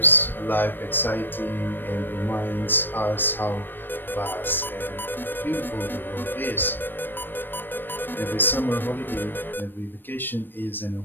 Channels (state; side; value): late; right; 0.095 ms